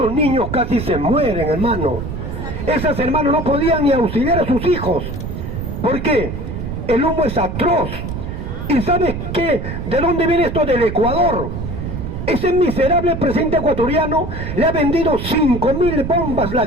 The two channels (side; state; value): right; noise; rumble, 6 dB below the sound